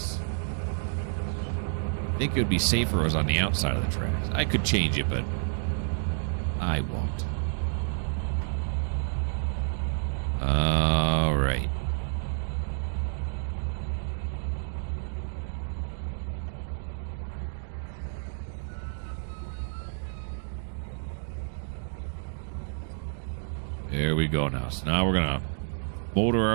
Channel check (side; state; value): left; silent; digital silence